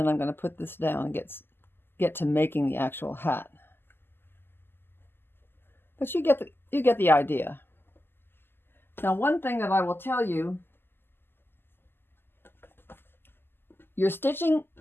I'm going to put this down and get to making the actual hat. But you get the idea. Now, one thing that I will tell you, your stitching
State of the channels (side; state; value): right; late; 0.10 ms